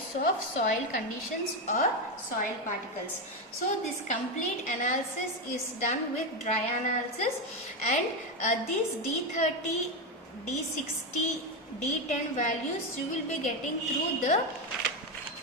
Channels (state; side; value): normal; both; correlation 0.11